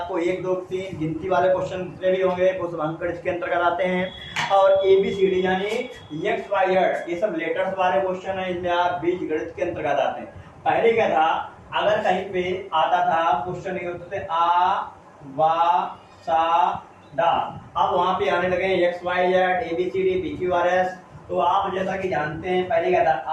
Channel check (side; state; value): both; identical; correlation 1.00